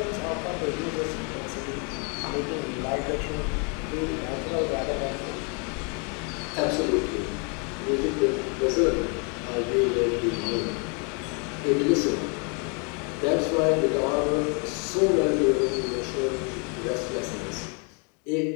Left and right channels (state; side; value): quieter; right; 35.8 dB